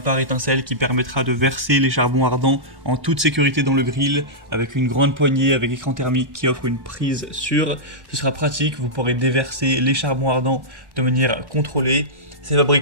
qui permettra de verser les charbons ardents en toute sécurité dans le grill, avec une grande poignée avec écran thermique qui offre une prise sûre. Ce sera pratique, vous pourrez déverser les charbons ardents de manière contrôlée. C'est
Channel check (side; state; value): left; late; 1.1 ms